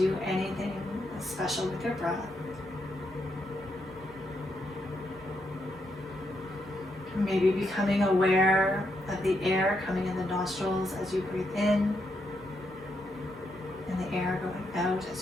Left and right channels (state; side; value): normal; both; correlation 0.80